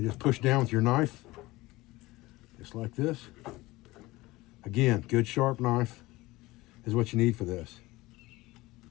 just push down with your knife, just like this. Again, good sharp knife is what you need for this.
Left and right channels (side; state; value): right; quieter; 19.9 dB